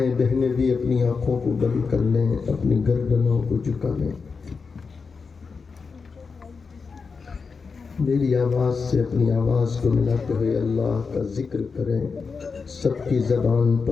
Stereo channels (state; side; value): quieter; right; 5.0 dB